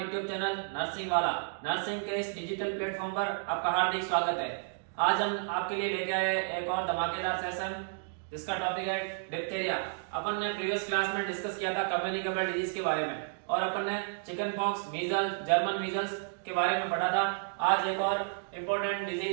channel nursing वाला। नर्सिंग के इस डिजिटल प्लेटफॉर्म पर आपका हार्दिक स्वागत है। आज हम आपके लिए लेके आए एक और धमाकेदार सेशन जिसका टॉपिक है डिप्थीरिया। अपन ने प्रीवियस क्लास में डिस्कस किया था कम्युनिकेबल डिजीज के बारे में और अपन ने chicken pox, measles, German measles के बारे में पढ़ा था। आज एक और इम्पोर्टेंट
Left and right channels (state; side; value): silent; left; digital silence